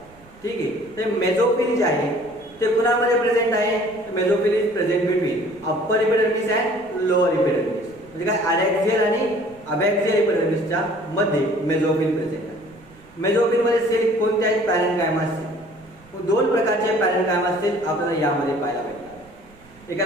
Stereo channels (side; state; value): right; noise; rumble, 26 dB below the sound